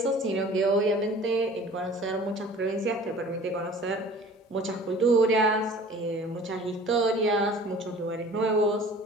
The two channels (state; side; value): normal; both; correlation 0.47